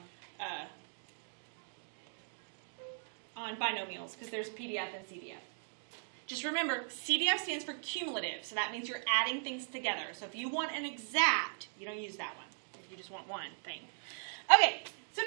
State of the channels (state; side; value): silent; left; digital silence